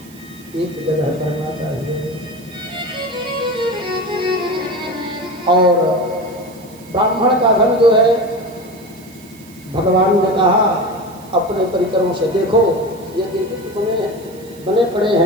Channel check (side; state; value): right; noise; hiss, 23 dB below the sound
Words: एक जगह करना चाहिए। और ब्राह्मण का धन जो है, भगवान ने कहा अपने परिकरों से देखो ये गिरगिट बने पड़े